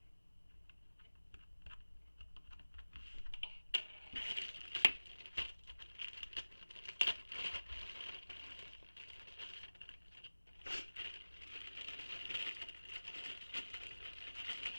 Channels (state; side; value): inverted; both; correlation -1.00